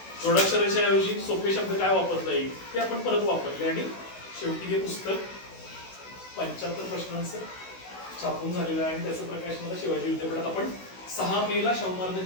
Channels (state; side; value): late; right; 16 ms